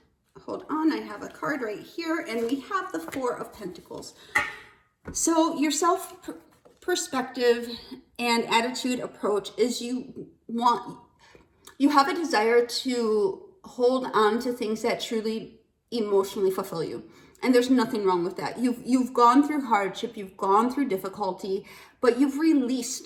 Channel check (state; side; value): identical; both; correlation 1.00